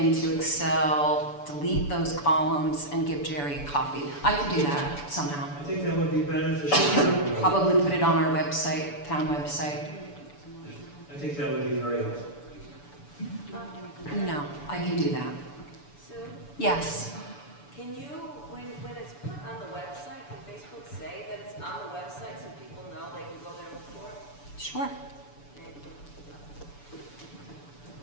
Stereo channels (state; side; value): late; right; 6.9 ms